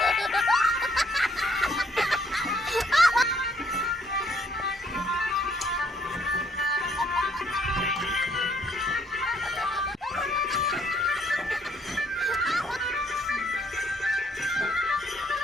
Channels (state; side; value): normal; both; correlation 0.67